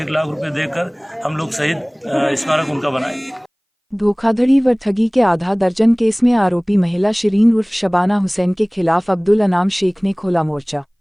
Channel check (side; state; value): both; identical; correlation 1.00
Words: 1 लाख रुपए देकर हम लोग शहीद स्मारक उनका बनाएंगे। धोखाधड़ी व ठगी के आधा दर्जन केस में आरोपी महिला शिरीन उर्फ शबाना हुसैन के खिलाफ अब्दुल अनाम शेख ने खोला मोर्चा।